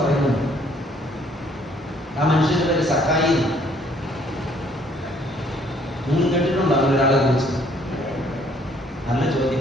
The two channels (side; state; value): both; normal; correlation 0.63